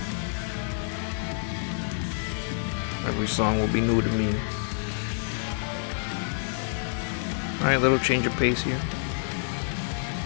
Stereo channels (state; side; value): silent; right; digital silence